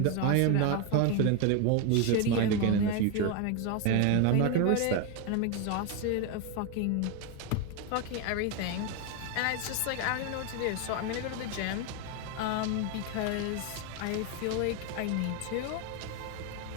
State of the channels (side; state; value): both; different; correlation 0.02